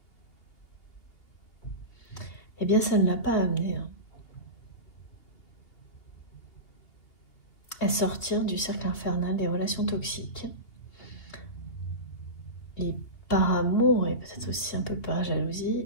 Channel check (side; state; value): right; late; 3.0 ms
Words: eh bien ça ne l'a pas amené à sortir du cercle infernal des relations toxiques. Et par amour, et peut-être aussi un peu par